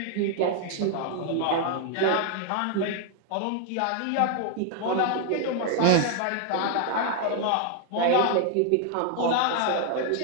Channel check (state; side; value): different; both; correlation 0.00